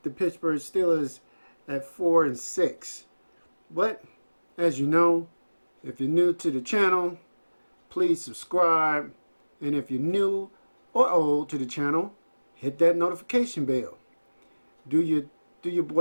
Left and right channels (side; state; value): both; inverted; correlation -1.00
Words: the Pittsburgh Steelers at 4-6. But as you know, if you're new to the channel, please subscribe, and if you're new or old to the channel, hit that notification bell. Do your